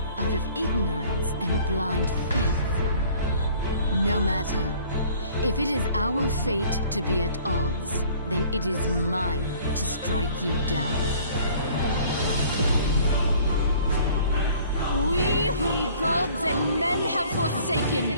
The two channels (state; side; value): inverted; both; correlation -0.53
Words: out of ignorance and blind faith. No matter. If it is our fate to be at odds, then it is mine to strike you down. We whom gods and men have